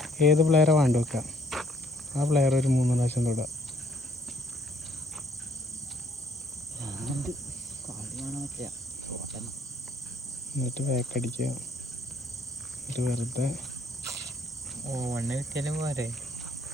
ഏത് പ്ലെയറെ വേണ്ട വെക്കാം, ആ പ്ലെയർ ഒരു 3 പ്രാവശ്യം തൊടുക. എന്നിട്ട് ബാക്കടിക്കുക. എന്നിട്ട് വെറുതെ 1 കിട്ടിയാലും പോരെ.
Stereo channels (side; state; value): left; noise; hiss, 29 dB below the sound